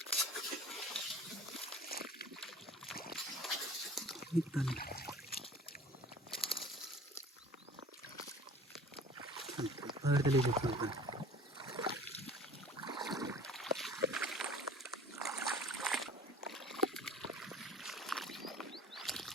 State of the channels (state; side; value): normal; both; correlation 0.46